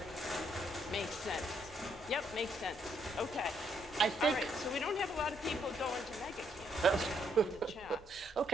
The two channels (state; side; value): normal; both; correlation 0.73